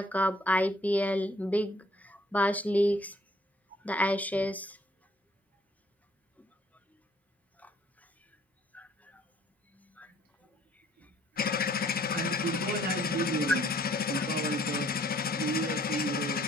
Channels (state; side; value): normal; both; correlation 0.61